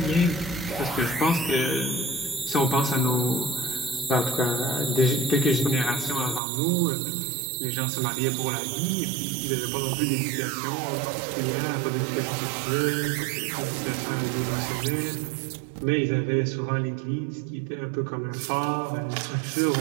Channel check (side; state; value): left; drops out; at 6.4 s